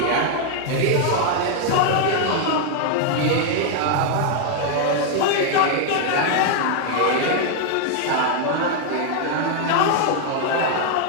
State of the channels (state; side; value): different; both; correlation 0.00